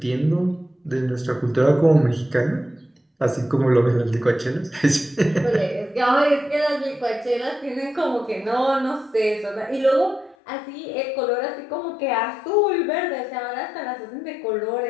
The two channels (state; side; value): drops out; right; at 10.4 s